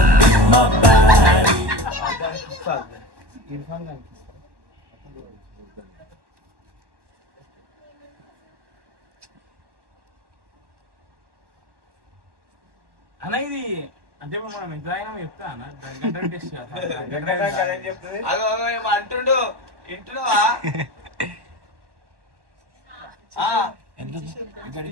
అన్న ఇది అంటే మనం ఎంత అయినా చెప్తా అన్న టెస్ట్ అంటుండు ఇంటున్నావా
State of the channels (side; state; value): left; late; 1.1 ms